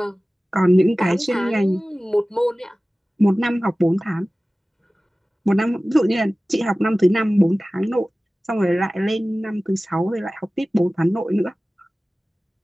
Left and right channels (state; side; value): normal; both; correlation 0.97